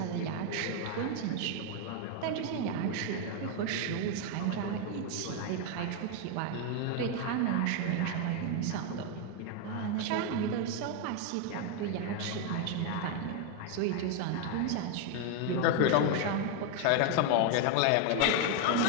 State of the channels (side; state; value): both; different; correlation 0.01